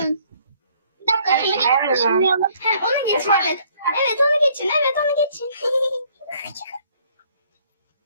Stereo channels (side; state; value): both; inverted; correlation -0.62